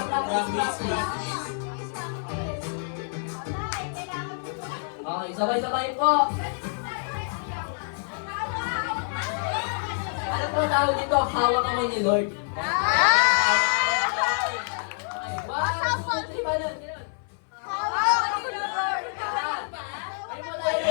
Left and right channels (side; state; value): right; silent; 57 dB below the other